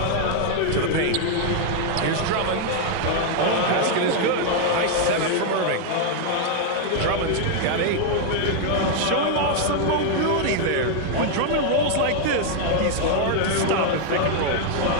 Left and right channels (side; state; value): both; different; correlation 0.00